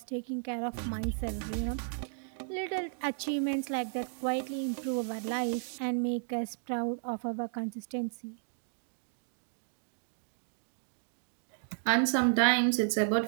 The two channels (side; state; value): left; silent; digital silence